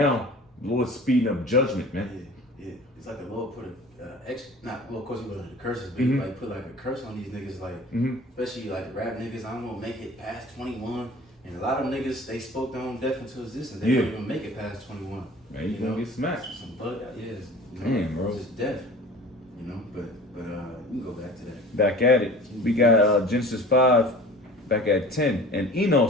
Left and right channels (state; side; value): normal; both; correlation 0.43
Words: the Lord's speeding up judgment, man. Yeah. It's like the Lord put of course he put the curses, but he like put like a curse on these niggas, like especially like the rap niggas. I don't want to make it past 21, and a lot of niggas they spoke their own death into existence. They don't even make it past 21. Man, you gonna get smacked. Some bug out, Damn, bro. Just death, But we can go back to that. Back at it. We got Genesis 5, back at 10. And